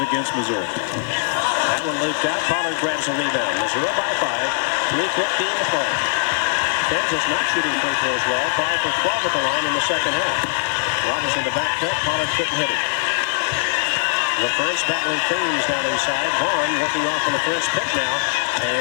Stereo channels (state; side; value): silent; right; digital silence